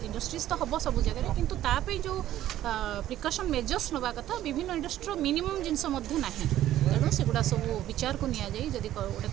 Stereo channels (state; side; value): quieter; left; 13.0 dB